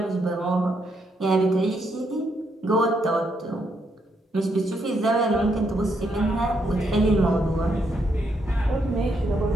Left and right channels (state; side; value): normal; both; correlation 0.77